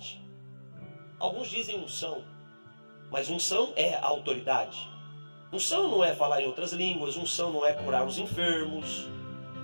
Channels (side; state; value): both; inverted; correlation -1.00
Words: Alguns dizem unção, mas unção é a autoridade. Unção não é falar em outras línguas, unção não é curar os enfermos.